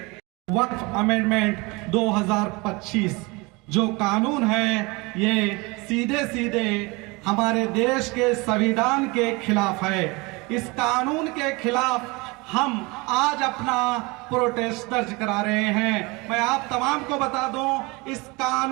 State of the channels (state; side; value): quieter; left; 25.7 dB